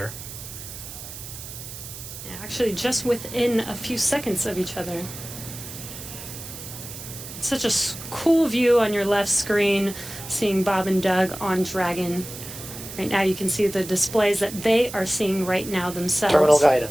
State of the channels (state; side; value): noise; right; hiss, 12 dB below the sound